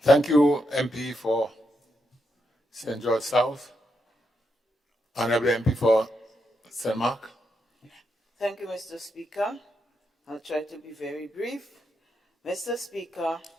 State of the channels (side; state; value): both; normal; correlation 0.82